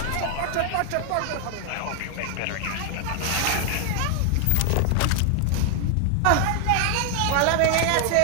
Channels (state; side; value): different; both; correlation 0.00